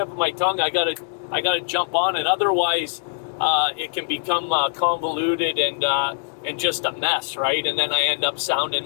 of my tongue, I gotta jump on it. Otherwise, it can become convoluted and just a mess, right? And then I end up sounding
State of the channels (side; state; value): right; silent; 64 dB below the other